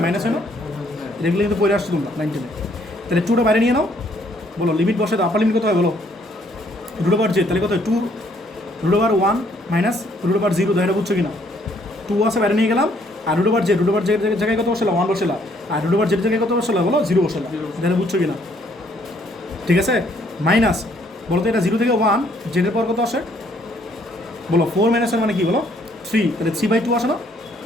মাইনাস হয় না এগুলো কিন্তু পরে আসছে তোমরা 90 তাহলে টুটা বাইরে নিয়ে নাও বলো লিমিট বসে দাও আপার লিমিট কত হয় বলো রুট ওভার জেড তাহলে কত হয় 2 root over 1 minus root over 0 ধরে বুঝছো কিনা 2 আছে বাইরে নিয়ে গেলাম আর রুট ওভার জেড জায়গায় কত বসেলা 1 বসেলা আর রুট ওভার জেড জায়গায় কত বসেলা বলো 0 বসেলা ধরে বুঝছো কিনা ঠিক আছে মাইনাস বলো তো এটা 0 থেকে 1 জেডের পর কত আসে বলো 4 মাইনাস মানে কি বলো 3 তাহলে 3/2 আসে না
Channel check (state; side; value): normal; both; correlation 0.66